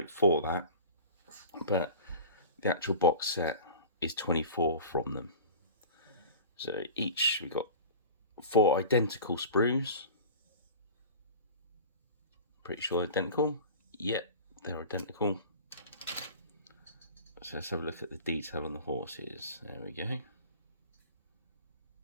for that, but the actual box set is 24 from them. So each we got 4 identical sprues. Pretty sure identical. Yep, they're identical. So let's have a look at the detail on the horses. There we go.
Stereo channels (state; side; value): inverted; both; correlation -0.37